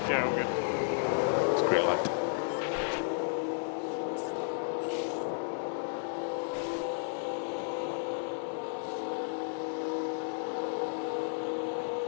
Yeah, all good. It's green light.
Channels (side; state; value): right; silent; digital silence